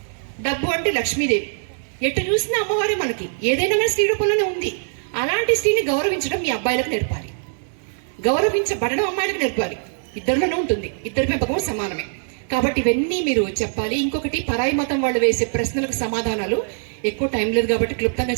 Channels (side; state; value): left; silent; 64 dB below the other